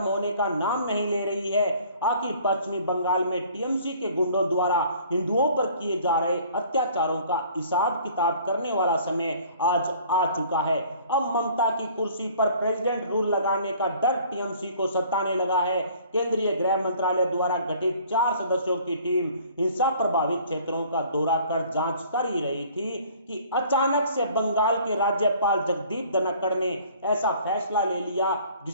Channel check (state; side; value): inverted; both; correlation -0.53